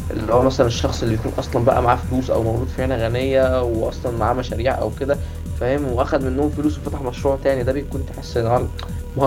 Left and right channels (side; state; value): both; identical; correlation 1.00